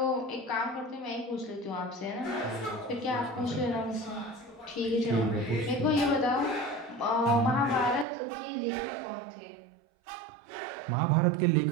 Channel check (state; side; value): drops out; left; at 8.1 s